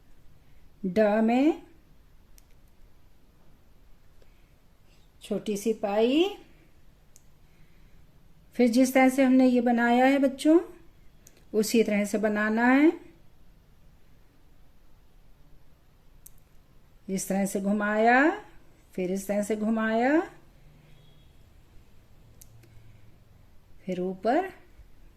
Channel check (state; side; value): identical; both; correlation 1.00